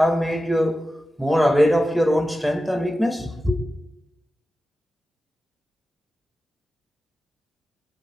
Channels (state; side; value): normal; both; correlation 0.93